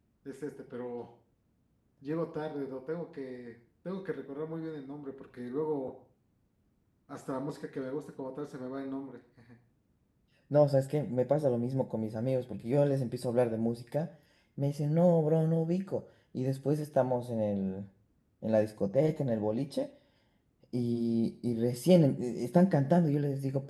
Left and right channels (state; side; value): identical; both; correlation 1.00